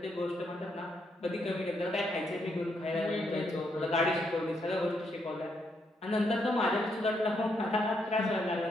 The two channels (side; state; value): both; normal; correlation 0.77